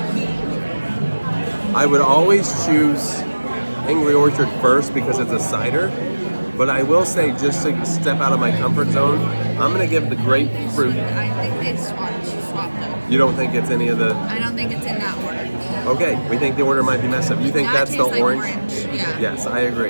I would always choose Angry Orchard first because it's a cider. But I will say, just to step out of my comfort zone, I'm gonna give the grapefruit. I think they swapped though. You don't think it's any of the? I don't think it's in that order. Okay, we think the order might be messed up. You think That that's the tastes like orange? Yeah. Yes, I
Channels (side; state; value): both; inverted; correlation -1.00